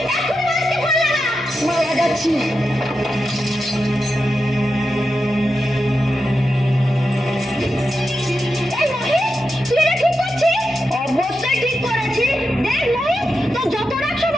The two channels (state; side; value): normal; both; correlation 0.89